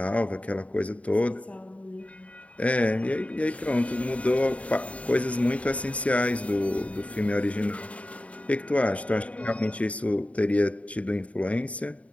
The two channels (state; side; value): late; right; 0.066 ms